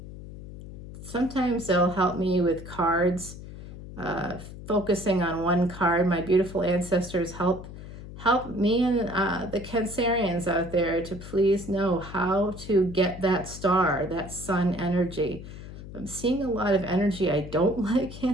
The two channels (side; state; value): left; noise; hum, 13 dB below the sound